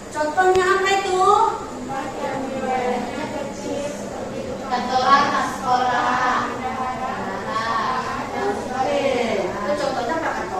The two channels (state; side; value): noise; right; hum, 27 dB below the sound